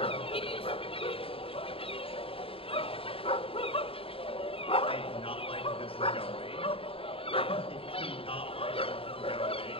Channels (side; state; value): right; late; 0.27 ms